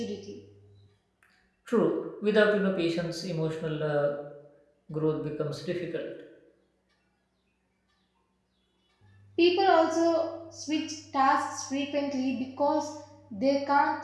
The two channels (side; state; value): both; identical; correlation 1.00